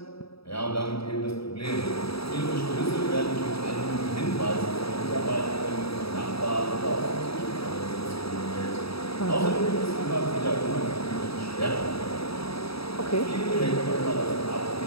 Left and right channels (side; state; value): right; late; 0.77 ms